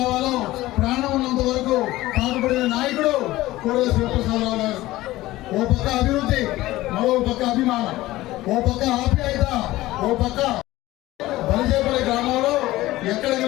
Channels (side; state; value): right; quieter; 17.2 dB